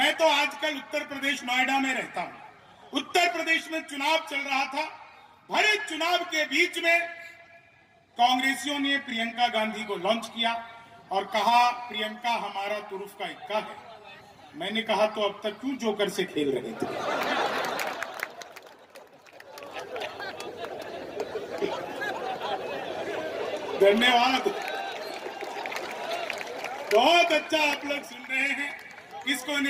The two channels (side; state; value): both; identical; correlation 1.00